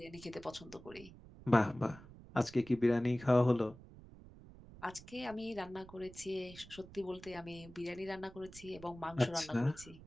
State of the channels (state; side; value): noise; right; rumble, 18 dB below the sound